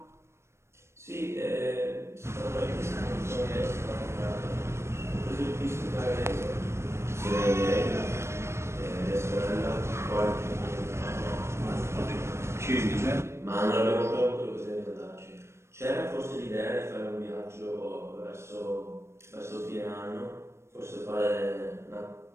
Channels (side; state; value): left; late; 0.13 ms